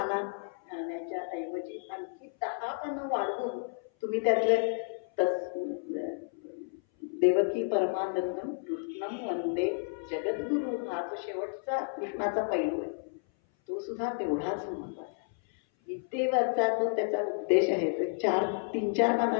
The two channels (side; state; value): right; silent; 57 dB below the other